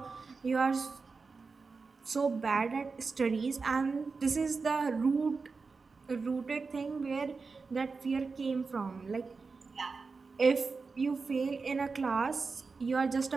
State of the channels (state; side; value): quieter; left; 4.5 dB